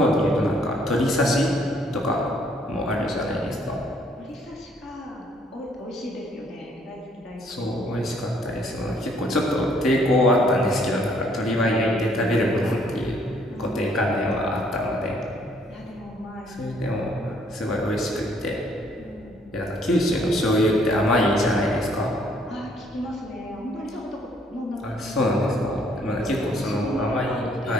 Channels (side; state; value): both; normal; correlation 0.65